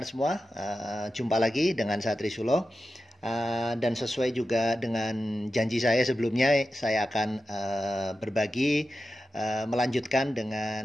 semua? Jumpa lagi dengan saya Trisulo. Dan sesuai juga dengan janji saya sebelumnya, saya akan berbagi, melanjutkan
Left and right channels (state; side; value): normal; both; correlation 0.92